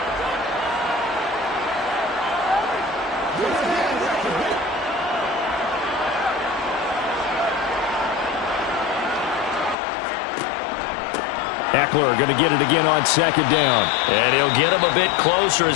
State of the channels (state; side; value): drops out; right; at 9.8 s